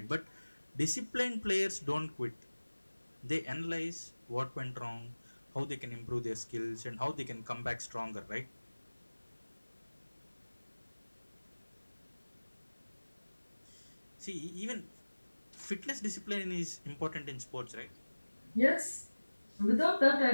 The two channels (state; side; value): inverted; both; correlation -1.00